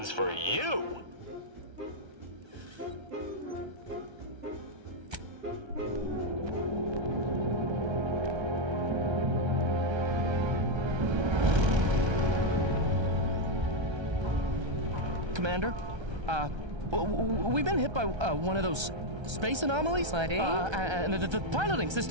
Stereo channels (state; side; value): late; left; 1.3 ms